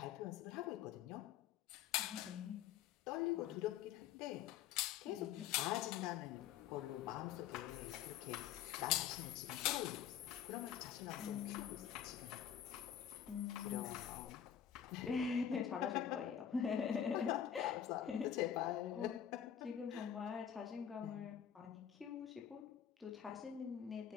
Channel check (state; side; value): quieter; right; 9.4 dB